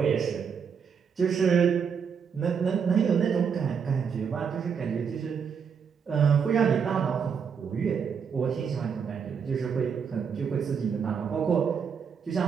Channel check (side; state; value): left; quieter; 6.7 dB